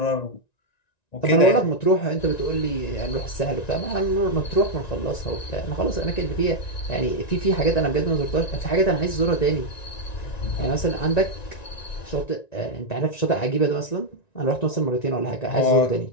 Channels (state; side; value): late; right; 1.9 ms